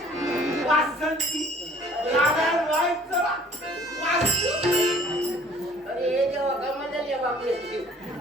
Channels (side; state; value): both; normal; correlation 0.54